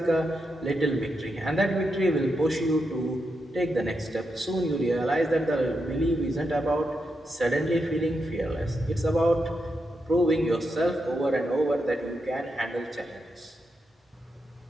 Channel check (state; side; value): normal; both; correlation 0.85